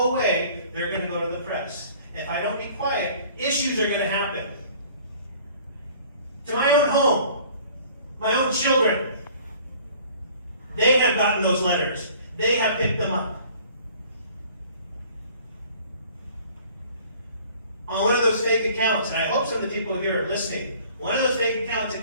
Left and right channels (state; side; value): inverted; both; correlation -0.51